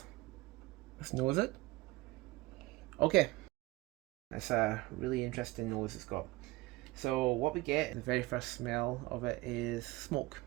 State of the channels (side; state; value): left; quieter; 20.7 dB